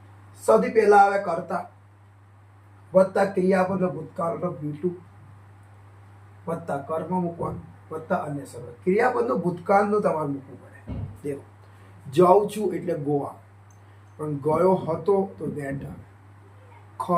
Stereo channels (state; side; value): identical; both; correlation 1.00